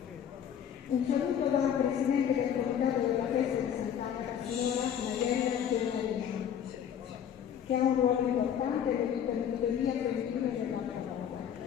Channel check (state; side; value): quieter; right; 9.0 dB